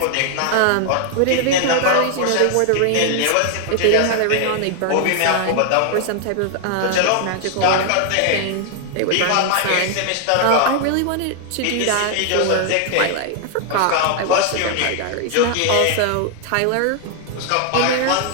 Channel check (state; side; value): different; both; correlation 0.00